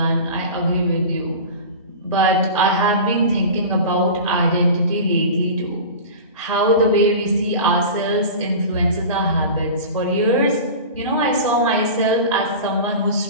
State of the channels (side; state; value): both; inverted; correlation -0.33